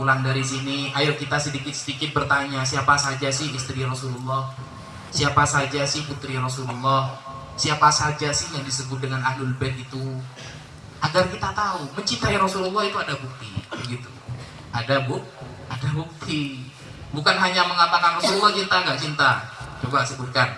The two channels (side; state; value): both; identical; correlation 1.00